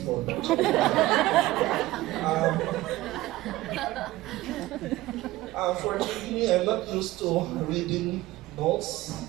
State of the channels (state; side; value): quieter; left; 17.6 dB